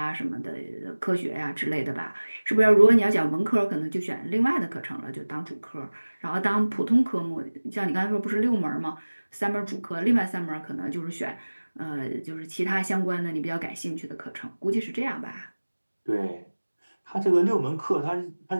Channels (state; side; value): inverted; both; correlation -1.00